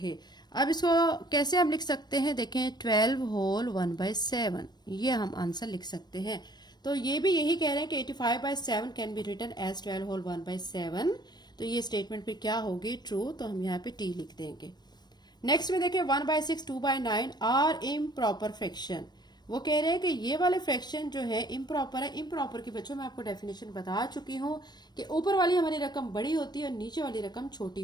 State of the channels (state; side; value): late; right; 0.20 ms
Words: अब इसको कैसे हम लिख सकते हैं, देखें 12 होल 1/7, ये हम आंसर लिख सकते हैं। तो ये भी यही कह रहे हैं कि 85/7 can be written as 12 whole 1/7। तो ये स्टेटमेंट पे क्या होगी, ट्रू। तो हम यहाँ पे टी लिख देंगे। नेक्स्ट में देखें 1/6 2/9 आर इम्प्रॉपर फ्रैक्शन। वो कह रहे हैं कि ये वाले फ्रैक्शन जो है इम्प्रॉपर है। इम्प्रॉपर की बच्चों मैं आपको डेफिनेशन बता चुकी हूँ कि ऊपर वाली हमारी रकम बड़ी होती है और नीचे वाली रकम छोटी